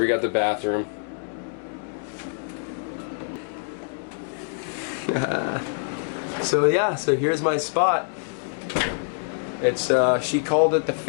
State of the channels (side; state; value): right; silent; digital silence